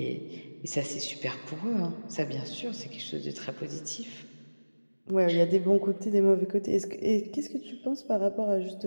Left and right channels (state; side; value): inverted; both; correlation -1.00